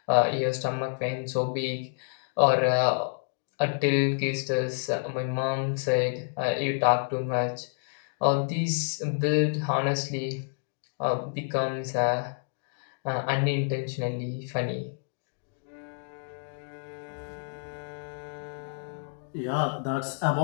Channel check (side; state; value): right; silent; digital silence